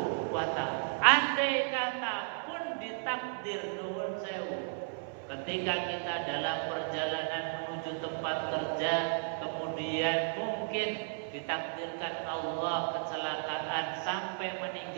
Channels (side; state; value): left; silent; 55 dB below the other